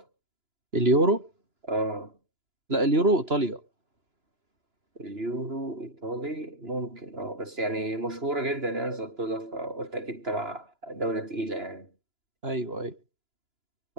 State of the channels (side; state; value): left; late; 2.9 ms